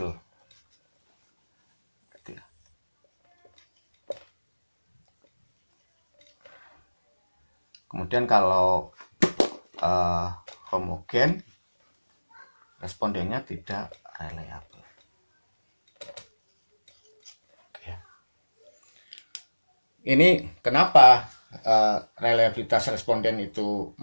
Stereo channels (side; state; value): both; inverted; correlation -1.00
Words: Kemudian kalau homogen, respondennya tidak reliable. Ini kenapa reliabilitas responden itu